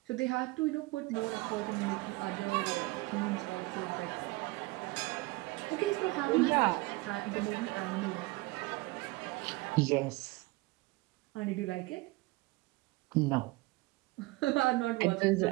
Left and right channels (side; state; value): left; quieter; 22.2 dB